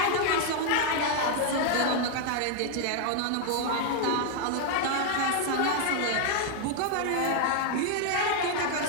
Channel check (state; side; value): different; both; correlation 0.00